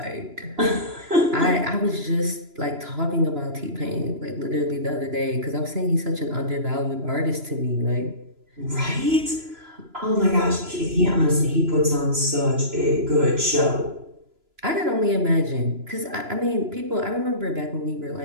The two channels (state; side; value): late; left; 2.9 ms